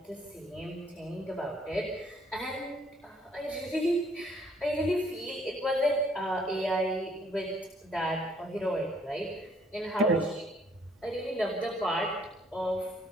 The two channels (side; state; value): both; normal; correlation 0.64